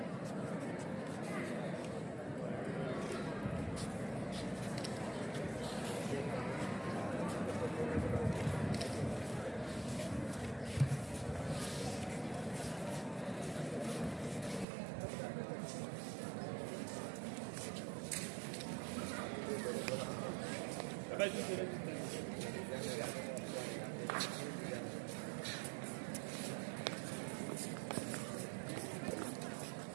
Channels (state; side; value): drops out; left; at 14.7 s